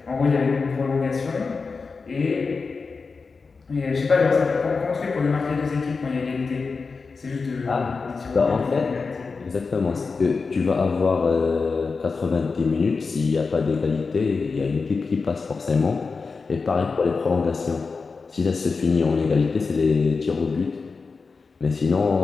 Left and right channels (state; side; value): quieter; right; 4.5 dB